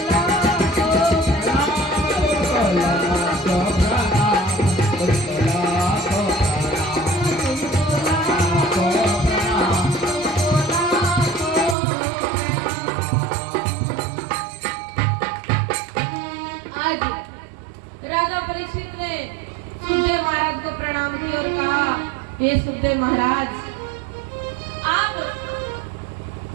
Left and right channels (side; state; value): left; drops out; at 11.8 s